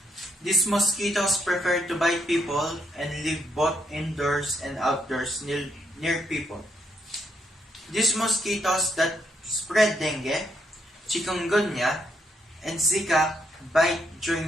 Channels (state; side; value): normal; both; correlation 0.76